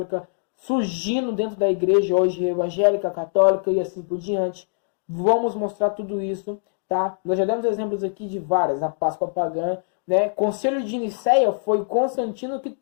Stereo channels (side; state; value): right; silent; digital silence